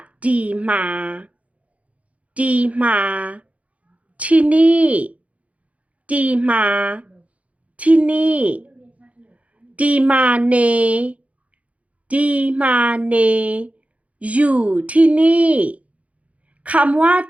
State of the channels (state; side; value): late; left; 0.066 ms